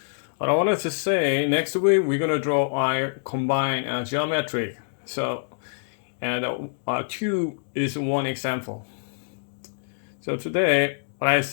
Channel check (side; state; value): right; silent; digital silence